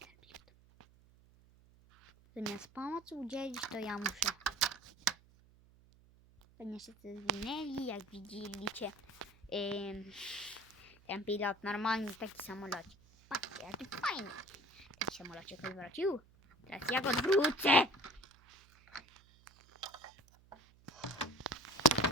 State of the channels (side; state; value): right; noise; hum, 27 dB below the sound